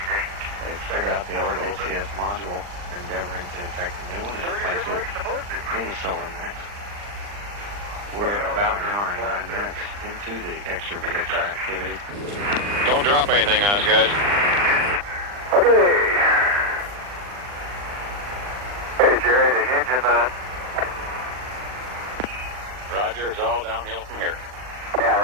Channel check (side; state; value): left; late; 39 ms